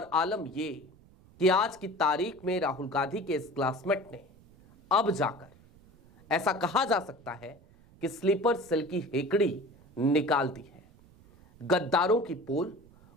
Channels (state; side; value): noise; right; rumble, 26 dB below the sound